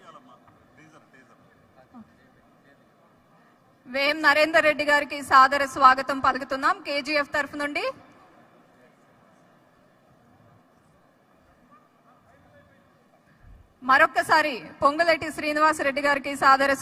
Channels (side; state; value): both; identical; correlation 1.00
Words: వేం నరేందర్ రెడ్డి గారికి సాదర స్వాగతం పలుకుతున్నాం కేజీఎఫ్ తరఫు నుండి. మరొక్కసారి పొంగులేటి శ్రీనివాసరెడ్డి గారికి సాదర